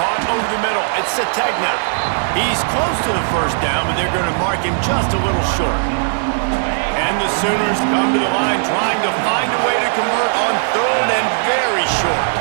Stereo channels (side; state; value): left; silent; digital silence